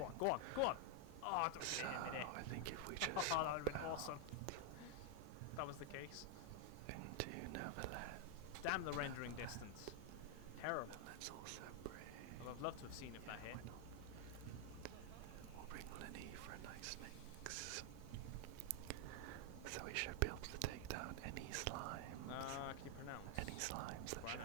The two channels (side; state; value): both; different; correlation 0.00